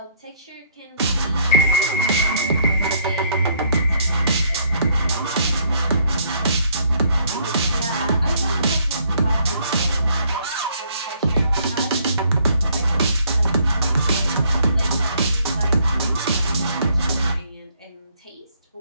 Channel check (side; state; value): both; inverted; correlation -0.66